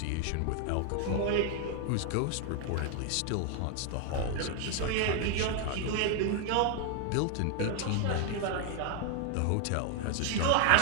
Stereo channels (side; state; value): both; different; correlation 0.00